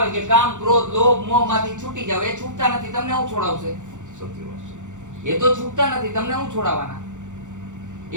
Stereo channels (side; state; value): left; late; 0.85 ms